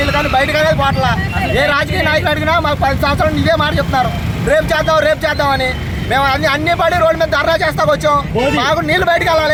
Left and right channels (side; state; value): both; identical; correlation 1.00